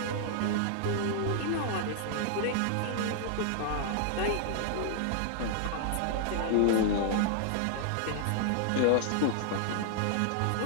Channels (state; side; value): different; both; correlation 0.00